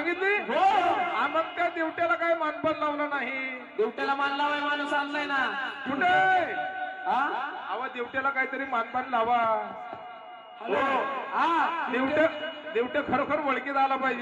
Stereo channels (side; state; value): both; identical; correlation 1.00